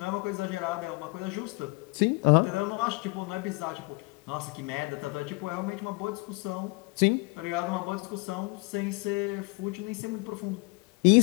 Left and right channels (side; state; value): right; quieter; 27.9 dB